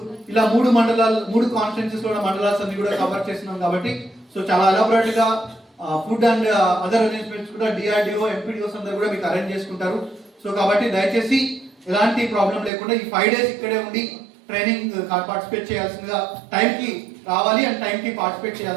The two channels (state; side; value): drops out; left; at 12.7 s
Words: ఇలా 3 మండలాలు, 3 కాన్స్టిట్యున్సీస్ లో మండలాస్ అన్ని కూడా కవర్ చేస్తున్నాం. కాబట్టి సో చాలా ఎలాబరేట్ గా ఫుడ్ అండ్ అదర్ అరేంజ్మెంట్స్ కూడా డిఆర్డిఓ, ఎంపీడీఓస్ అందరూ కూడా మీకు అరేంజ్ చేసుకుంటారు. సో కాబట్టి దయచేసి ఎలాంటి ప్రాబ్లం లేకుండా ఈ 5 days ఇక్కడే ఉండి ట్రైనింగ్ పార్టిసిపేట్ చేయాల్సిందిగా, టైంకి రావాలి అండ్ టైంకి పార్టిసిపేట్